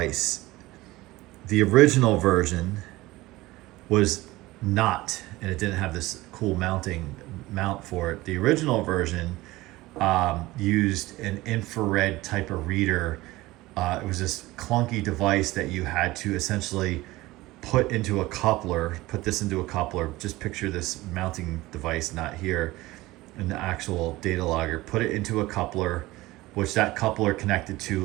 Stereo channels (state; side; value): quieter; left; 19.0 dB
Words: The original version was not, and it didn't have this cool mount for it. The original version used an infrared type of reader. It was this clunky device that you had to essentially put this into a coupler. Just picture this mounting device, not here in the actual data logger. Put it into a coupler, which that coupler connected to